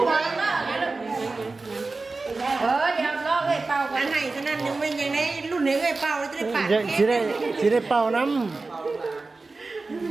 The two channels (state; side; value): quieter; left; 3.7 dB